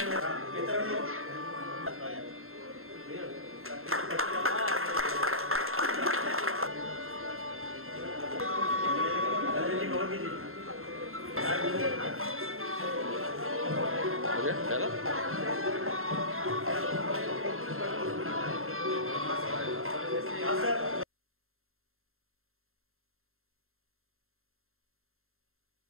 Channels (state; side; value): late; left; 0.61 ms